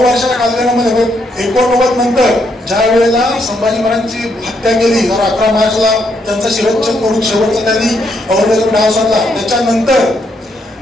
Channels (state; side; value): normal; both; correlation 0.75